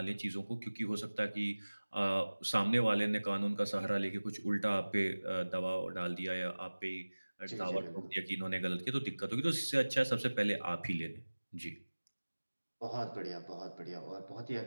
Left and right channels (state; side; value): inverted; both; correlation -1.00